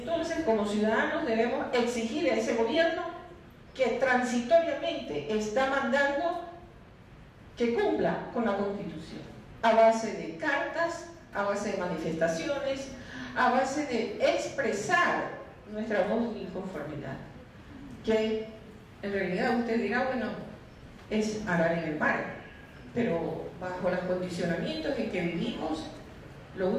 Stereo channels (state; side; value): identical; both; correlation 1.00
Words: como ciudadanos debemos exigir a ese gobierno que transitoriamente está mandando que cumpla con la Constitución, a base de cartas, a base de manifestaciones, a base de expresar nuestra voz de inconformidad, que en realidad usted dirá, bueno, es arar en el mar, pero bajo los condicionamientos en que vivimos, lo